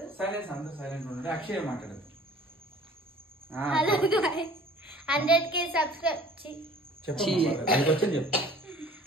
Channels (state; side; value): normal; both; correlation 0.49